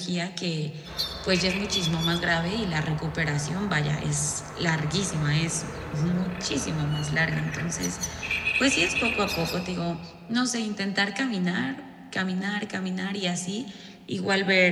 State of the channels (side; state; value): both; identical; correlation 1.00